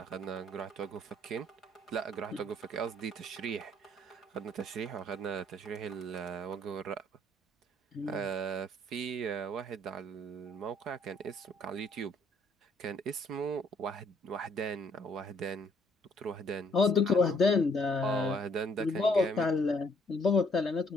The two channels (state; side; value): normal; both; correlation 0.65